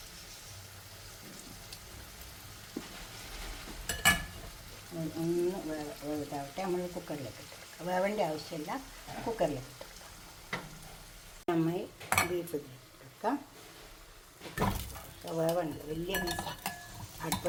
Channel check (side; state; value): both; identical; correlation 1.00